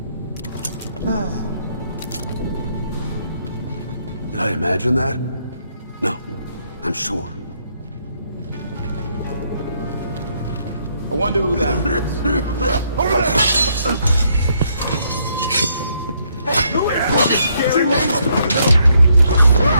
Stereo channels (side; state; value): both; inverted; correlation -0.72